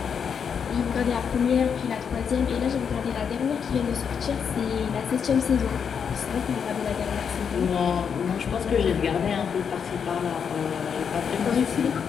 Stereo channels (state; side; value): quieter; right; 7.0 dB